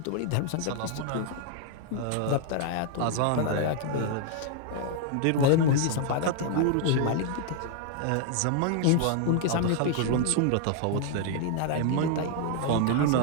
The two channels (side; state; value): both; different; correlation 0.00